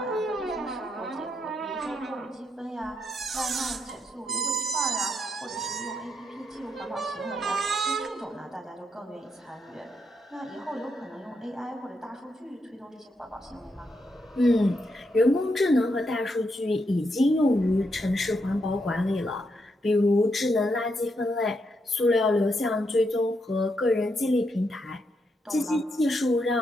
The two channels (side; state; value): both; normal; correlation 0.80